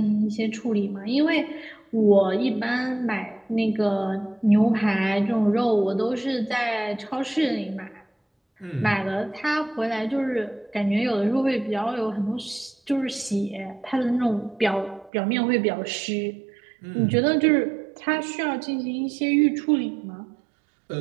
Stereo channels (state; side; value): drops out; left; at 15.1 s